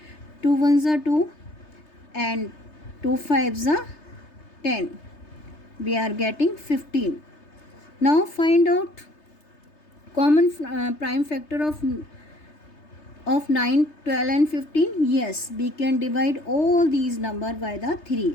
2 ones are 2 and 2 fives are 10. We are getting 15. Now find out common prime factor of 9, 12 and 15. Yes, we can divide all these number by the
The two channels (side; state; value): right; late; 3.3 ms